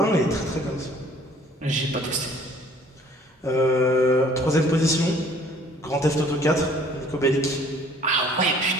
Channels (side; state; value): both; normal; correlation 0.56